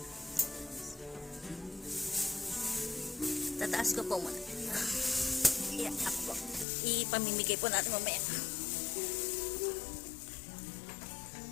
Tataas ko po muna. Yeah, ako po. Ipamimigay po natin mamaya.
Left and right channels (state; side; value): drops out; right; at 6.7 s